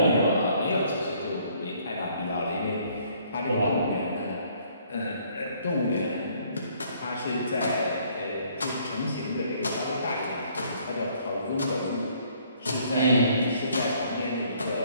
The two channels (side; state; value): both; inverted; correlation -0.63